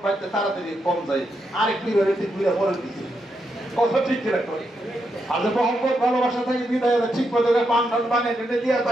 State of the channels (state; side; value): normal; both; correlation 0.82